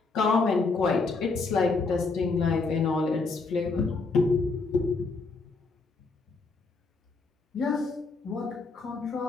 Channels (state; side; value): quieter; right; 4.0 dB